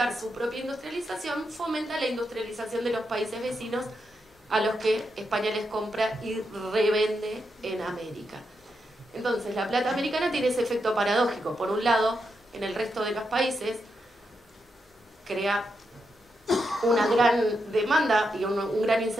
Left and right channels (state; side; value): normal; both; correlation 0.84